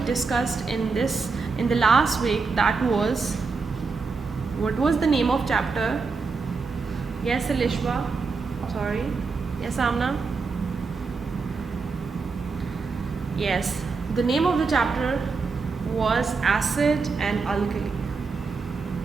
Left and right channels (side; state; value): left; quieter; 4.6 dB